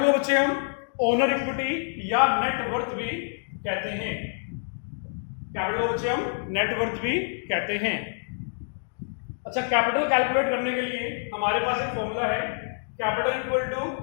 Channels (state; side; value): silent; right; digital silence